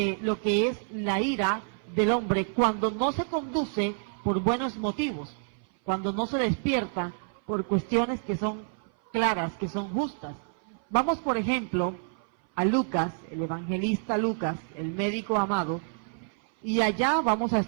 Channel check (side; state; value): left; silent; 57 dB below the other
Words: lo que es la ira del hombre cuando no se conduce por buenos motivos, cuando no se despierta por cuestiones que son claras, que son justas. Vamos, por ejemplo, a Lucas, el evangelista Lucas, el médico amado, y allá vamos a